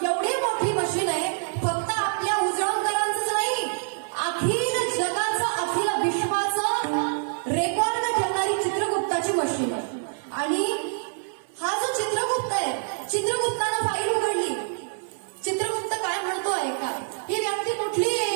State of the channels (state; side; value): silent; left; 61 dB below the other